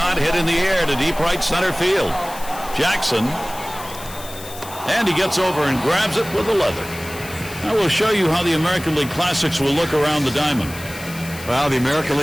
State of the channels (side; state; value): left; noise; hiss, 15 dB below the sound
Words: hit in the air to deep right center field. Jackson. And he gets over and grabs it with the leather. I will show you how the American League Classics will look around the diamond. Well, the American